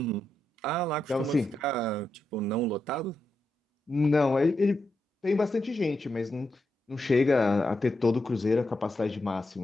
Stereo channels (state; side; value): normal; both; correlation 0.85